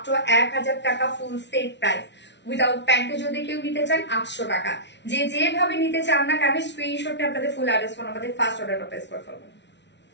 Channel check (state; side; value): late; right; 0.51 ms